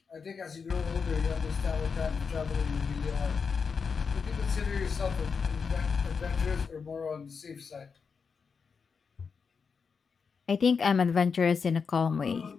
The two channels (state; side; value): quieter; right; 5.6 dB